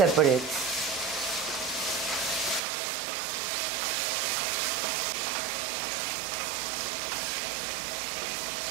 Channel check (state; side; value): drops out; left; at 2.6 s